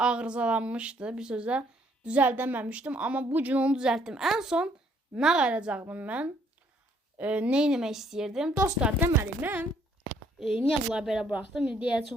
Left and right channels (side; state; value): both; normal; correlation 0.65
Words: Bir sözlə düzəldəməmişdim. Amma bugün onu düzəltdim. En son nə qalacaqdım mən? Ne etmək istəyirdim? Dostlar, deməli mən niyə bunları belə buraxdım? Deyə